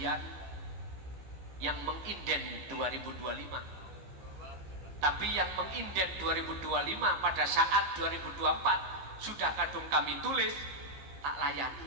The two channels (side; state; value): left; late; 15 ms